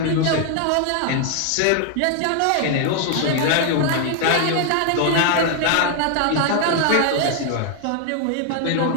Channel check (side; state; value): both; different; correlation 0.00